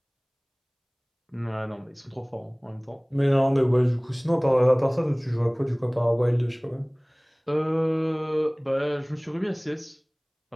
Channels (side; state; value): both; identical; correlation 1.00